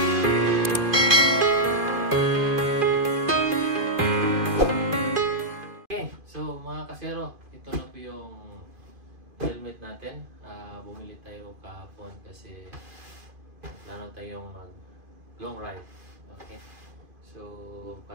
So mga kasero, ito na po yung helmet natin. Bumili tayo kahapon kasi plano tayong mag long ride. Okay. So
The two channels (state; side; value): late; left; 2.5 ms